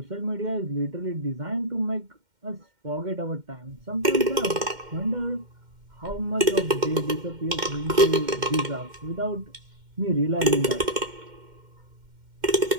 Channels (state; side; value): late; left; 2.1 ms